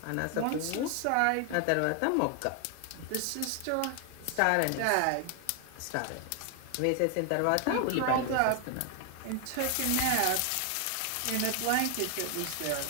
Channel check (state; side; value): different; both; correlation 0.00